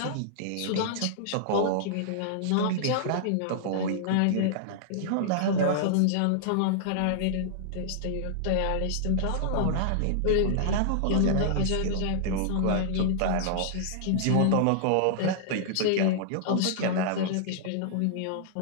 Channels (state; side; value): different; both; correlation -0.01